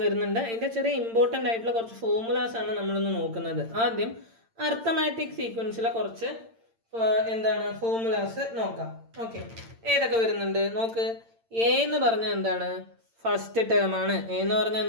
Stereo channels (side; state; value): left; late; 8.8 ms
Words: വരുന്നുണ്ട്. അതിൻ്റെ ചെറിയ ഇമ്പോർട്ടൻ്റ് ആയിട്ടുള്ള കുറച്ച് ഫോർമുലാസ് ആണ് നമ്മളൊന്ന് നോക്കുന്നത്. ആദ്യം അർത്ഥമാറ്റിക് സീക്വൻസിലെ കുറച്ച് എന്താണ് ഫോർമുലാസ് നോക്കാം. ഓക്കെ, ഏതൊക്കെ വരുന്നുണ്ട് നോക്ക്. എ എന്ന് പറഞ്ഞാൽ എന്താണ്? ഫസ്റ്റ് ടേം ആണ്. എ എന്ന് പറഞ്ഞാൽ